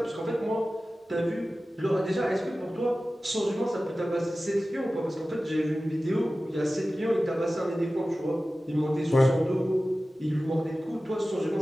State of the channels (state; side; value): normal; both; correlation 0.96